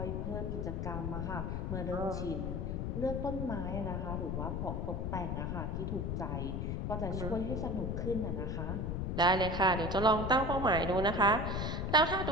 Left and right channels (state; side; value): noise; left; rumble, 1 dB below the sound